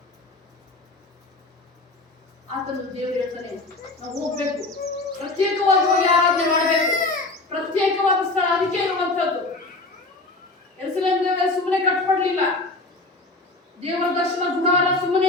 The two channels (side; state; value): right; quieter; 3.2 dB